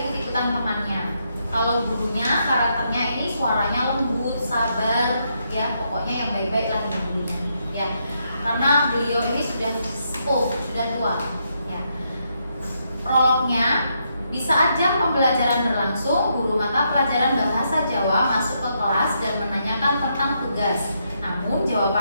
ikut-ikutan temannya. Kalau gurunya karakternya ini suaranya lembut, sabar, ya, pokoknya yang baik-baik lah gurunya, ya. Karena beliau ini sudah sepuh, sudah tua, ya. Prolognya, di saat jam pembelajaran berlangsung, guru mata pelajaran bahasa Jawa masuk ke kelas dan menanyakan tentang tugas. Namun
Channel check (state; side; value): inverted; both; correlation -0.78